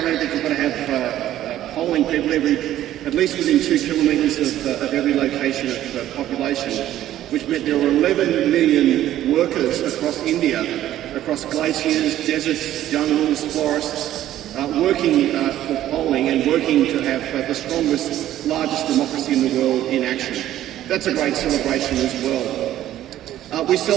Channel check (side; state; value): left; quieter; 12.9 dB